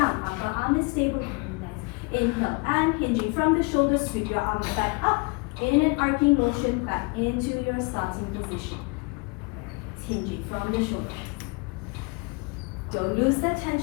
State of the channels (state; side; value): quieter; right; 30.4 dB